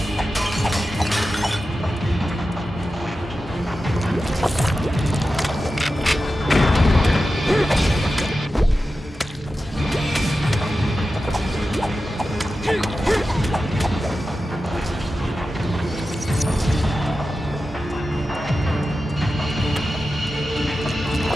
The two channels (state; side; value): normal; both; correlation 0.92